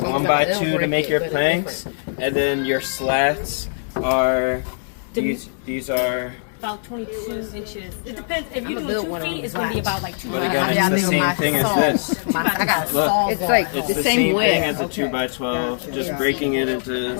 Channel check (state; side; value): silent; right; digital silence